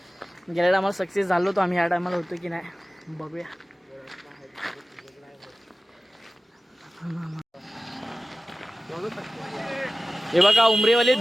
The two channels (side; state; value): both; normal; correlation 0.97